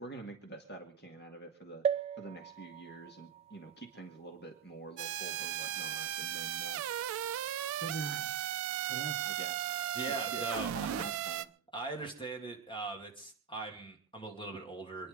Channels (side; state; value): left; quieter; 7.5 dB